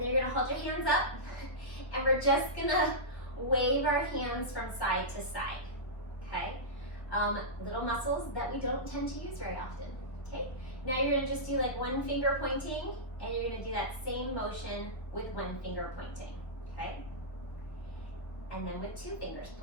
then you're gonna hold your hands up, and we're just gonna wave our hands from side to side, okay? Little muscles that we don't tend to use very often, okay? Now you're gonna just do like one finger pointing, and you're gonna do that same motion with one finger pointing, okay? And then with two fingers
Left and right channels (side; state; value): right; late; 1.3 ms